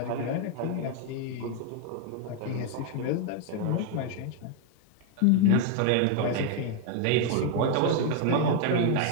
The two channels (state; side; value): different; both; correlation 0.00